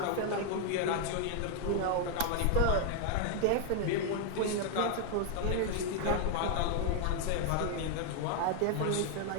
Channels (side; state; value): both; different; correlation 0.00